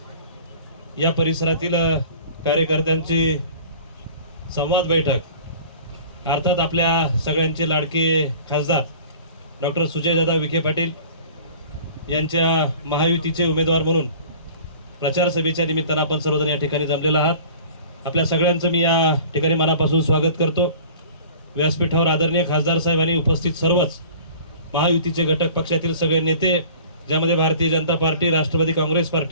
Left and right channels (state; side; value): inverted; both; correlation -0.45